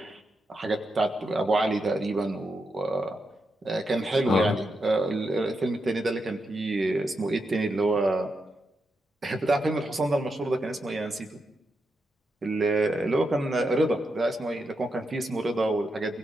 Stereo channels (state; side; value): normal; both; correlation 0.85